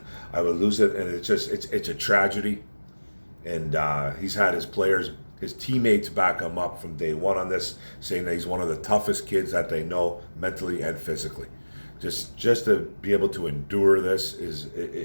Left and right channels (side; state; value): both; inverted; correlation -1.00